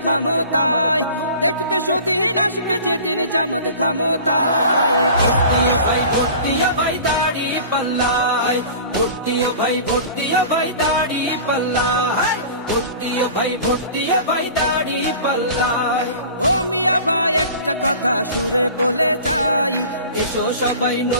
ক্ষমতায়, দেখবে সুদিন আসবে যেদিন জামাত ক্ষমতায়। ভর্তিয়া ভাই ভর্তিয়া ভাই দাড়ি পাল্লায়, ভর্তিয়া ভাই ভর্তিয়া ভাই দাড়ি পাল্লায়, ভর্তিয়া ভাই ভর্তিয়া ভাই দাড়ি পাল্লায়। ও মিয়া ভাই একটা কথা সুরে বলে যাই, এসো সবাই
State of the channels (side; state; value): both; inverted; correlation -0.41